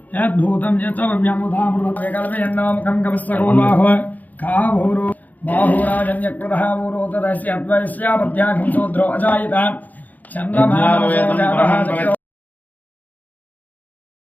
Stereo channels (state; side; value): late; right; 0.080 ms